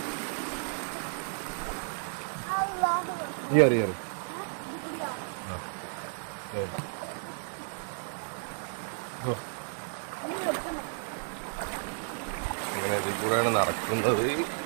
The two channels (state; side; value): silent; left; 56 dB below the other